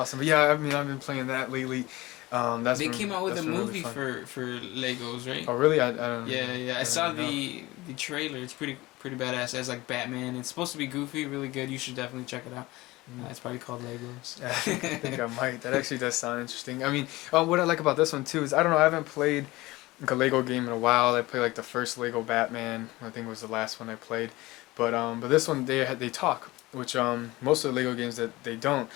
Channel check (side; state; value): right; quieter; 19.9 dB